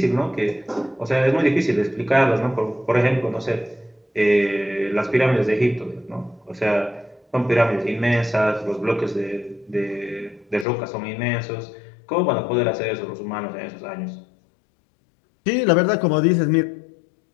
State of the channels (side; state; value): right; drops out; at 10.7 s